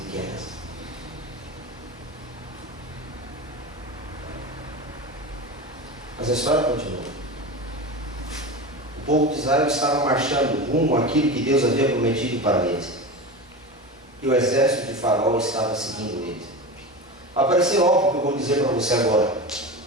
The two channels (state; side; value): normal; both; correlation 0.26